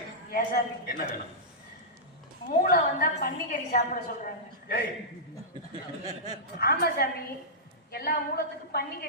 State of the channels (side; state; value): both; normal; correlation -0.14